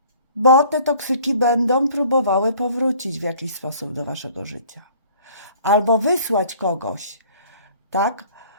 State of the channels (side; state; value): both; inverted; correlation -0.53